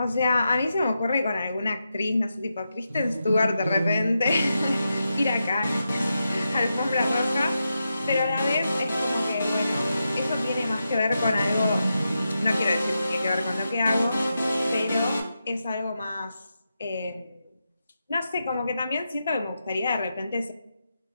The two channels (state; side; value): inverted; both; correlation -0.88